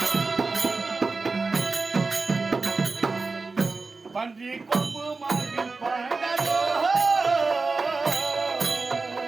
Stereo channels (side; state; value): left; quieter; 4.0 dB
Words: பன்றி கொம்பு மார்பில் பாய்ந்தாதோ